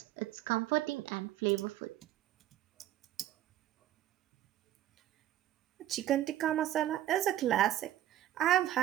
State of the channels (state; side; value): quieter; left; 13.0 dB